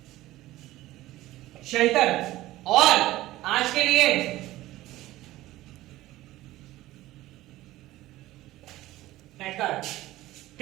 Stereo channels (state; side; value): quieter; left; 16.5 dB